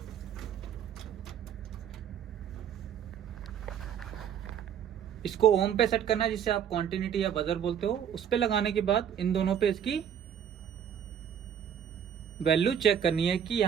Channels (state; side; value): quieter; left; 8.8 dB